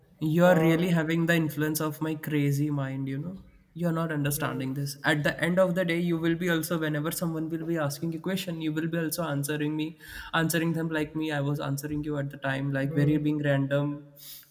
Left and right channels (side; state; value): both; identical; correlation 1.00